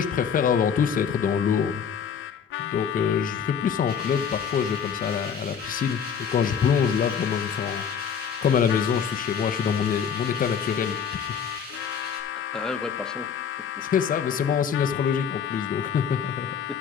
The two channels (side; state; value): right; quieter; 7.3 dB